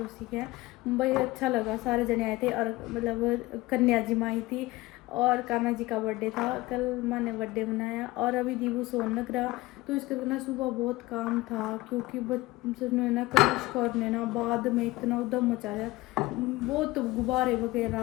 के हैं। भाई अच्छा लगा, सारे जने आए थे और मतलब कन्या जी माँ आई थी और कान्हा जी का बर्थडे था कल, माँ ने बर्थडे मनाया। और अभी दीबू सोन लग रहा, तो इसके ना सुबह बहुत काम था क्योंकि बच्चों ने ना कनिष्क और ने ना बाद में इतना उधम मचाया, बहुत गुब्बारे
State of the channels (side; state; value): right; quieter; 19.7 dB